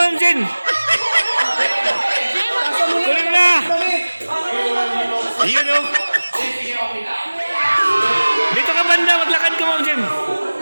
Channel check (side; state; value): both; inverted; correlation -1.00